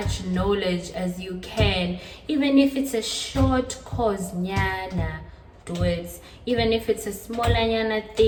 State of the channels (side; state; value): both; identical; correlation 1.00